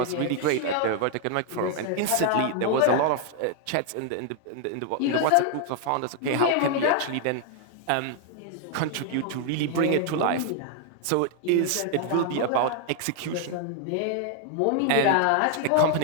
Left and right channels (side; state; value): both; different; correlation 0.00